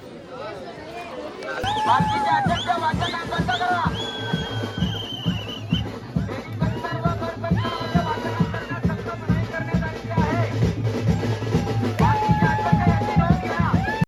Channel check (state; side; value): identical; both; correlation 1.00